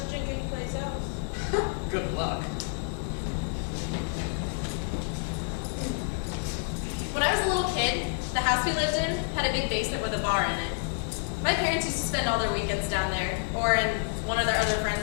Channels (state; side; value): silent; right; digital silence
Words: to drink anyplace else. Good luck. When I was a little kid, the house we lived in had a big basement with a bar in it. My parents used to spend all their weekends down there, or in one of their other